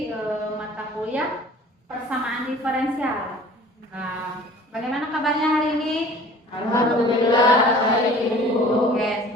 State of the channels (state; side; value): normal; both; correlation 0.47